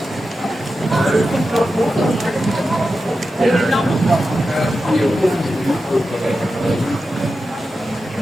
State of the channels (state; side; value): normal; both; correlation 0.91